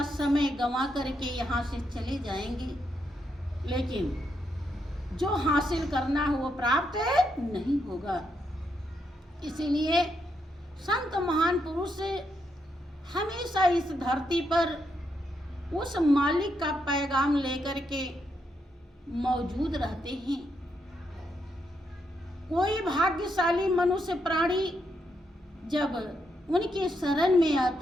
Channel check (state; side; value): normal; both; correlation 0.80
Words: समय गंवा करके यहाँ से चले जाएंगे, लेकिन जो हासिल करना है वो प्राप्त नहीं होगा। इसीलिए संत महान पुरुष हमेशा इस धरती पर उस मालिक का पैगाम लेकर के मौजूद रहते हैं। कोई भाग्यशाली मनुष्य प्राणी जब उनके शरण में